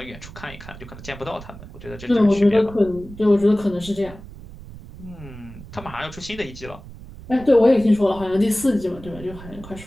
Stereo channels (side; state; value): right; noise; rumble, 16 dB below the sound